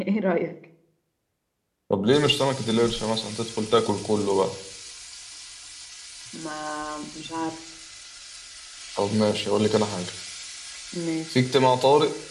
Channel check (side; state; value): both; identical; correlation 1.00